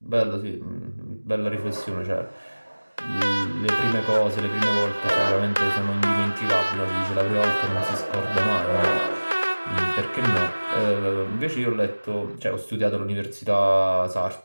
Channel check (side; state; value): both; inverted; correlation -1.00